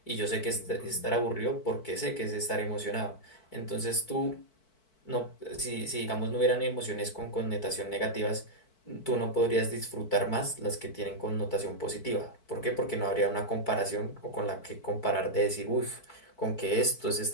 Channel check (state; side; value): late; right; 4.5 ms